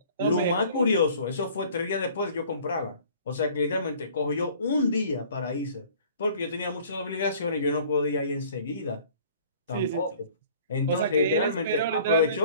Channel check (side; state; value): both; inverted; correlation -0.51